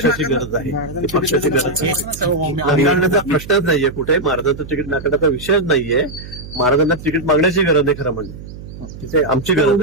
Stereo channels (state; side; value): noise; right; hum, 13 dB below the sound